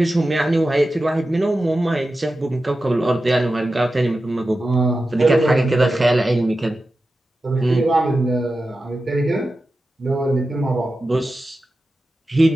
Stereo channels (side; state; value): both; normal; correlation 0.93